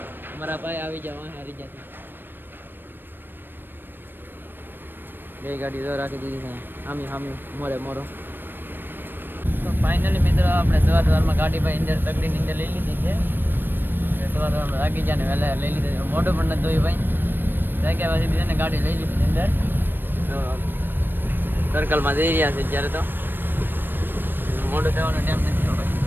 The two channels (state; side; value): late; left; 0.095 ms